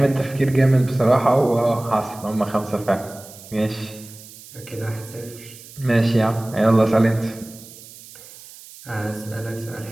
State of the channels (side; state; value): right; noise; hiss, 19 dB below the sound